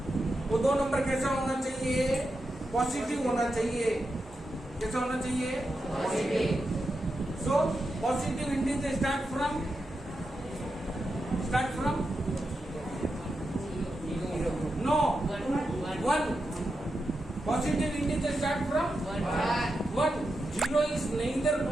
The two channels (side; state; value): both; normal; correlation 0.88